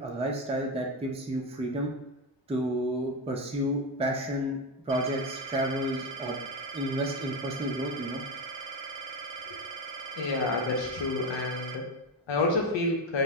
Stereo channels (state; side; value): normal; both; correlation 0.13